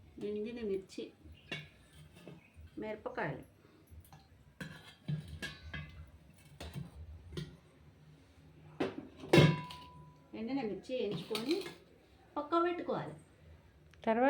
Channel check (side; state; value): both; identical; correlation 1.00